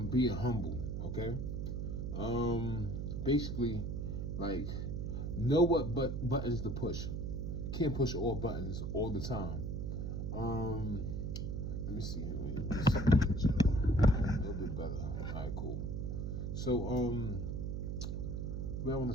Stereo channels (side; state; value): right; noise; hum, 2 dB below the sound